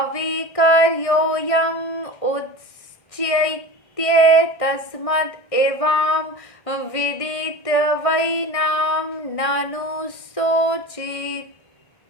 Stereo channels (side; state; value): right; late; 1.6 ms